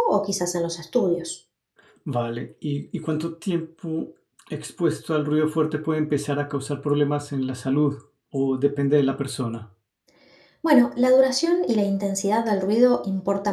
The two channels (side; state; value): both; identical; correlation 1.00